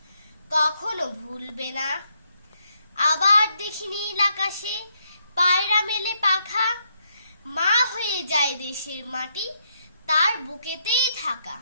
কখনো ভুলবে না। আবার দেখি নীল আকাশে পায়রা মেলে পাখা, মা হয়ে যায় দেশের মাটি তার বুকেতেই থাকা।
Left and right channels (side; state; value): both; inverted; correlation -0.76